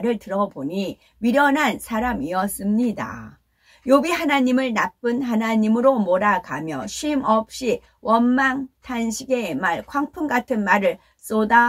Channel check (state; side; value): identical; both; correlation 1.00